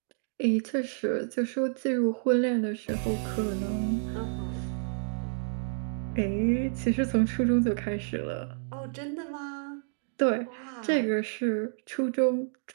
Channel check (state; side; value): silent; left; digital silence